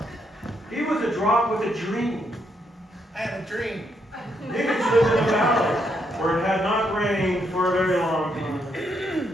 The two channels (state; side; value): normal; both; correlation 0.77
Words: He was a drop with a dream. I had a dream. Higgins lived in a valley where it had not rained for a very long